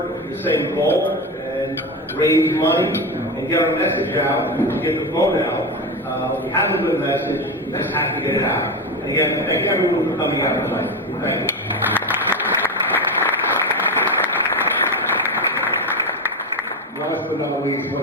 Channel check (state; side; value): normal; both; correlation 0.17